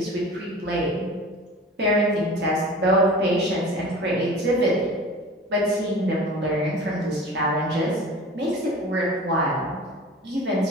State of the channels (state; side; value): normal; both; correlation 0.39